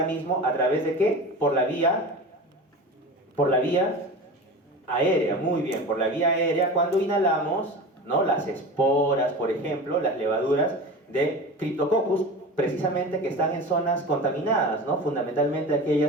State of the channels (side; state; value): both; normal; correlation 0.32